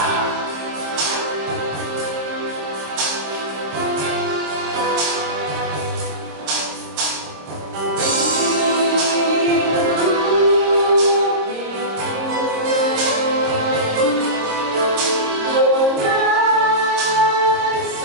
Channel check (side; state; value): left; late; 26 ms